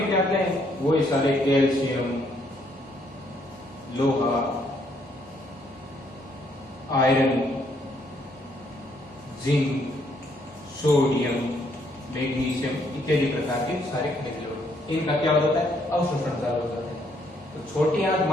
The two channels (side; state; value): both; normal; correlation 0.70